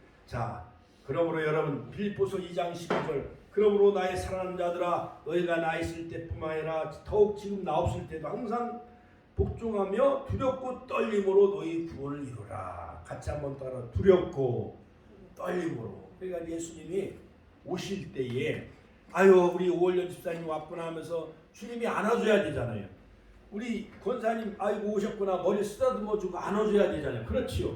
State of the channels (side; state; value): both; identical; correlation 1.00